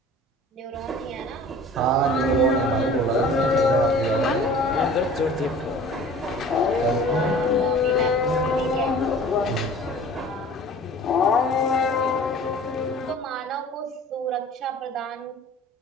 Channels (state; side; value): normal; both; correlation 0.45